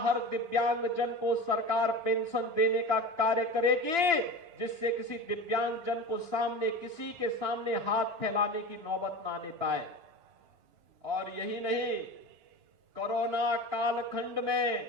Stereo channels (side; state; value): left; late; 2.9 ms